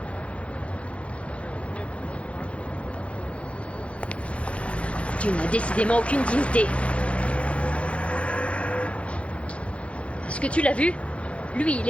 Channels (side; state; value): right; late; 0.062 ms